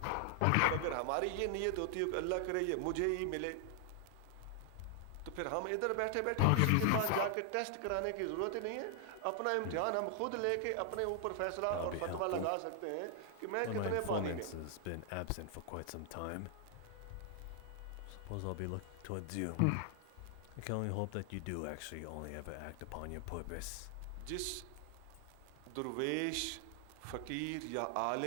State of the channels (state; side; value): different; both; correlation 0.00